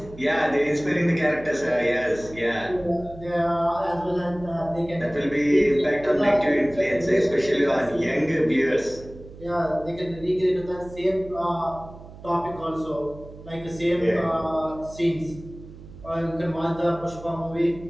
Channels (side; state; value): right; noise; hum, 17 dB below the sound